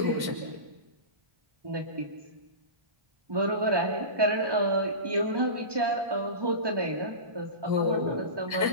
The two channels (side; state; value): left; late; 1.2 ms